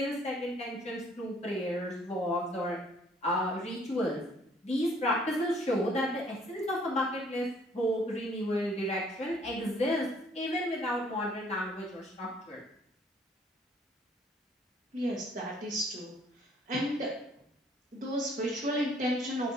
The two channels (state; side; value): normal; both; correlation 0.61